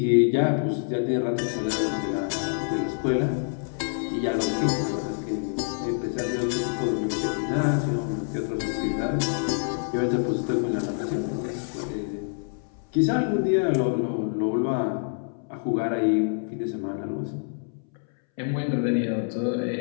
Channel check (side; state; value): right; silent; 61 dB below the other